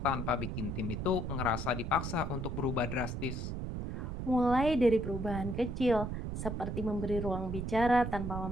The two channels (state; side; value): noise; right; rumble, 4 dB below the sound